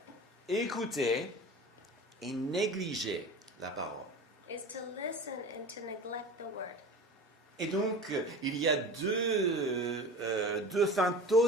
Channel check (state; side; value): normal; both; correlation 0.35